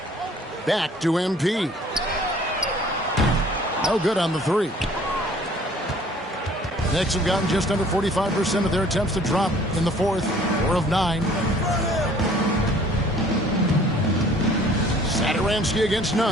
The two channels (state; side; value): normal; both; correlation 0.54